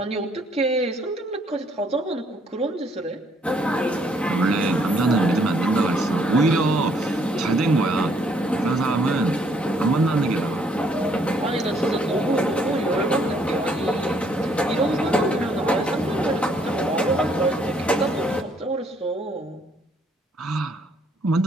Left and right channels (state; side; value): normal; both; correlation 0.67